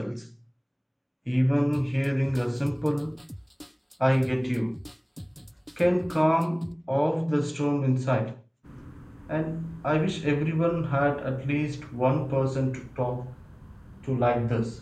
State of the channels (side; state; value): both; identical; correlation 1.00